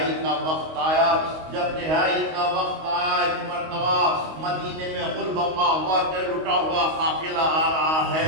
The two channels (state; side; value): late; left; 25 ms